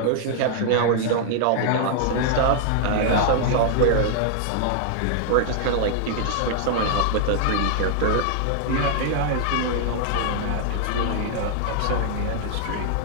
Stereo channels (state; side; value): different; both; correlation -0.01